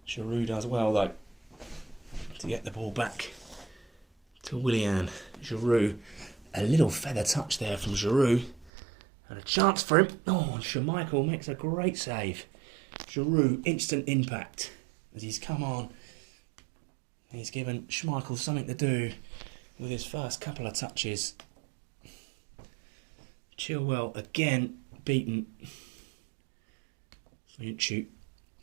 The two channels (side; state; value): left; drops out; at 8.7 s